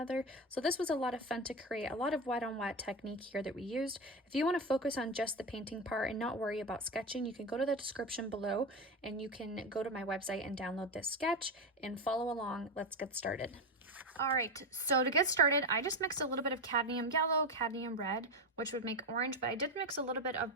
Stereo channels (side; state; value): both; normal; correlation 0.16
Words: So this was a lot of fun to create, a lot of wet on wet technique here that we used. If you want to focus on just the painting part and not worry about sketching, you can go to the description below and you can go to my website and download this sketch and follow along. Let's get started. All right, so to get started, I just mixed a little bit of cadmium yellow, cadmium red, which would make orange, but I did mix a little bit